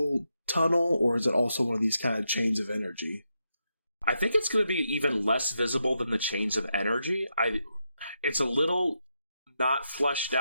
tunnel, or is it also one of these kind of chains of energy? I think it's going to be even less visible than the chains of energy. It's a little not fleshed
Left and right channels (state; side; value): inverted; both; correlation -0.84